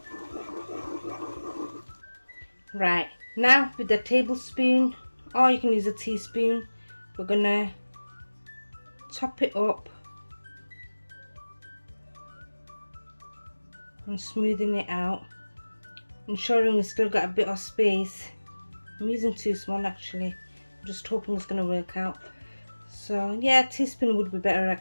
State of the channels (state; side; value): inverted; both; correlation -1.00